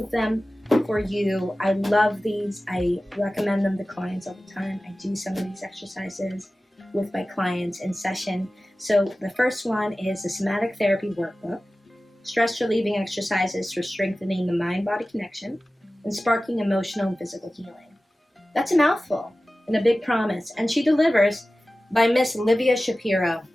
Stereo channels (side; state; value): both; normal; correlation 0.96